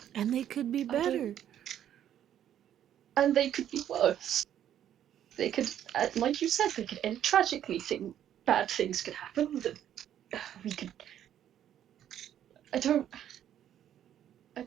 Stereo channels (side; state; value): left; quieter; 10.6 dB